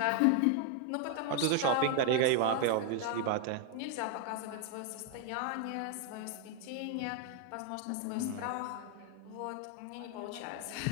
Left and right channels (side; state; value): both; different; correlation 0.00